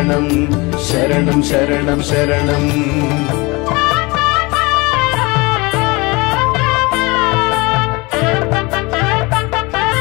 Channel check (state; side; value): quieter; right; 25.3 dB